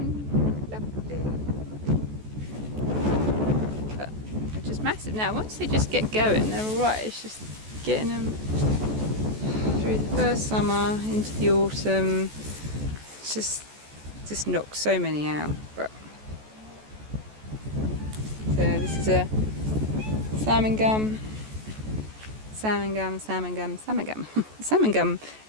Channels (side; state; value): left; late; 14 ms